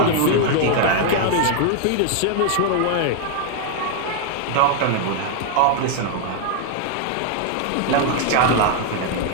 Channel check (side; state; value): both; different; correlation 0.00